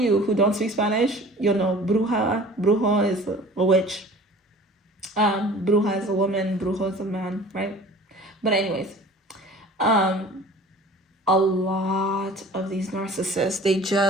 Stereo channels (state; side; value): normal; both; correlation 0.44